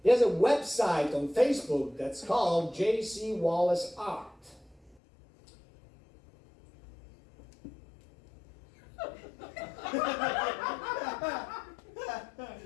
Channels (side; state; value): right; drops out; at 5.0 s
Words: There's a website on Facebook that's called J.C. Wallace Art.